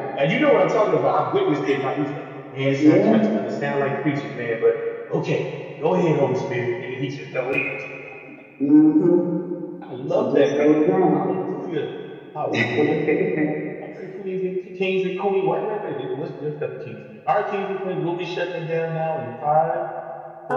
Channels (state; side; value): identical; both; correlation 1.00